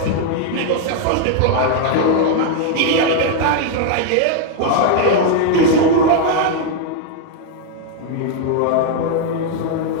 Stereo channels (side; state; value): both; different; correlation 0.01